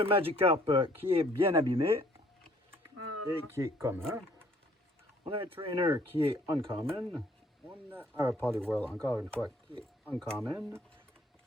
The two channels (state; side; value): normal; both; correlation 0.60